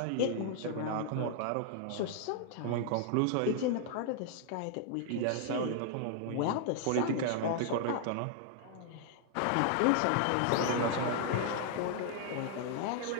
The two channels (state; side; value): different; both; correlation 0.00